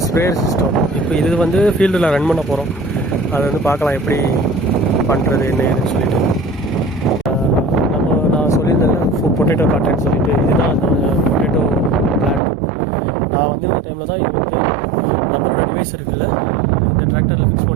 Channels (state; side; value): drops out; left; at 12.4 s